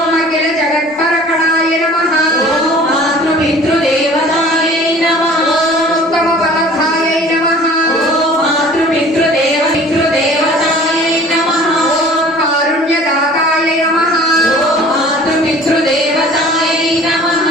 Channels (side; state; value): both; normal; correlation 0.47